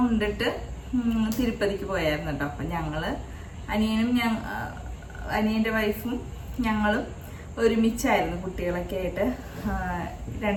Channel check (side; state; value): both; identical; correlation 1.00